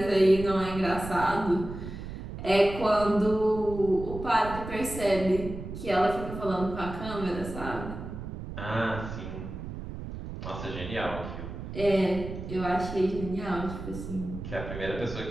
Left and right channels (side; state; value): right; noise; rumble, 9 dB below the sound